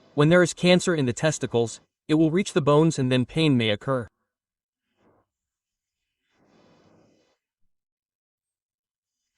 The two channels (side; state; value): both; identical; correlation 1.00